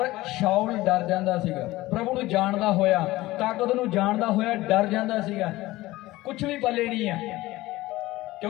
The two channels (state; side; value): quieter; right; 18.2 dB